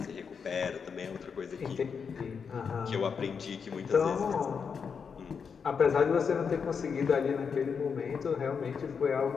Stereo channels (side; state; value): right; quieter; 6.2 dB